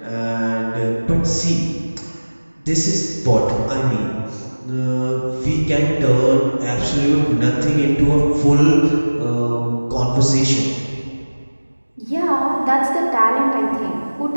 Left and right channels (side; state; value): both; inverted; correlation -1.00